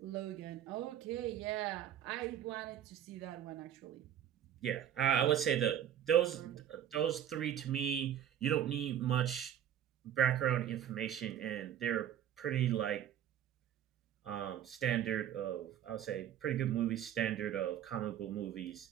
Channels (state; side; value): quieter; left; 10.3 dB